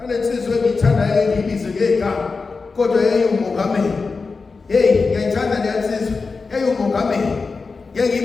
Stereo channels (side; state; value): right; quieter; 4.4 dB